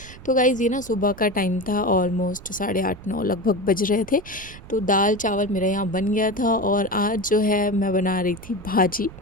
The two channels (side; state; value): right; noise; rumble, 17 dB below the sound